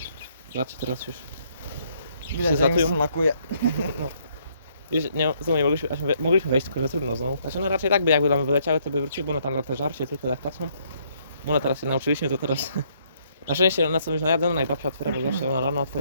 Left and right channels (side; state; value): both; inverted; correlation -0.68